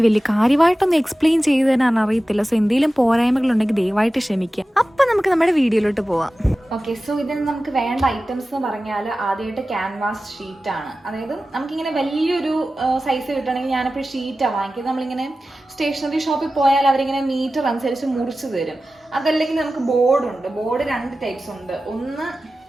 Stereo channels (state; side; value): normal; both; correlation 0.95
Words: വലിയ കാര്യമായിട്ടൊന്നും എക്സ്പ്ലെയിൻ ചെയ്ത് തരാൻ അറിയത്തില്ല. സോ എന്തെങ്കിലും പോരായ്മകളുണ്ടെങ്കിൽ ദയവായിട്ട് ക്ഷമിക്കുക. അപ്പം നമുക്ക് നമ്മുടെ വീഡിയോയിലോട്ട് പോവാം. ഓക്കെ, സോ ഇതിന് നമുക്ക് വേണ്ട ഐറ്റംസ് എന്ന് പറഞ്ഞാൽ ആദ്യമായിട്ട് ക്യാൻവാസ് ഷീറ്റാണ്. അതായത് നമുക്കിങ്ങനെ വലിയൊരു സൈസ് കിട്ടണമെങ്കിൽ ഞാനിപ്പോൾ ഷീറ്റാണ് വാങ്ങിക്കുന്നത്. നമ്മളിങ്ങനെ സ്റ്റേഷനറി ഷോപ്പിൽ പോയാൽ അവരിങ്ങനെ മീറ്റർ അനുസരിച്ച് മുറിച്ച് തരും. അതല്ലെങ്കിൽ നമുക്ക് ബോർഡുണ്ട്. ബോർഡ് 2 ടൈപ്സ് ഉണ്ട്. ഒന്ന്